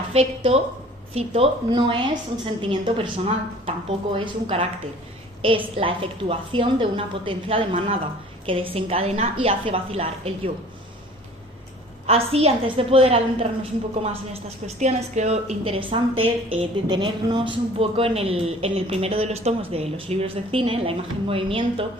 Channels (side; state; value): both; normal; correlation 0.48